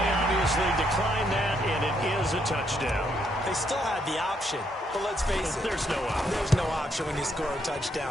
obviously decline that, and it is a touchdown. They still had the option, but let's face it. There's no option. There's no option when you score a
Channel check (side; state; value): both; normal; correlation 0.74